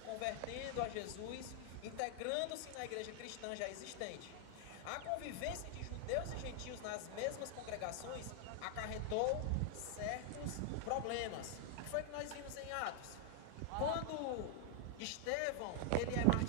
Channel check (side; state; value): both; different; correlation 0.00